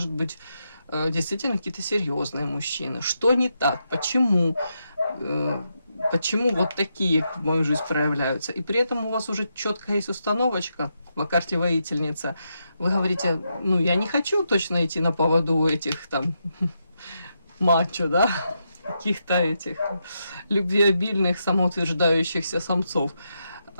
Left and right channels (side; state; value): both; inverted; correlation -0.83